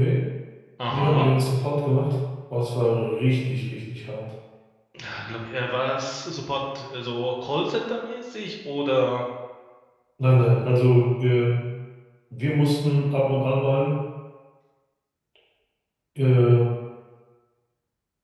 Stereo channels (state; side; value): identical; both; correlation 1.00